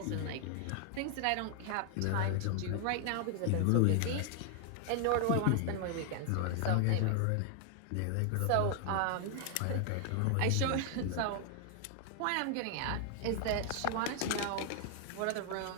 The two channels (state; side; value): different; both; correlation 0.00